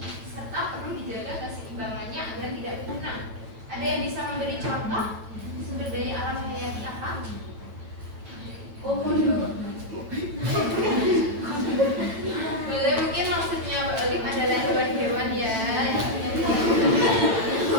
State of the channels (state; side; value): late; left; 9.0 ms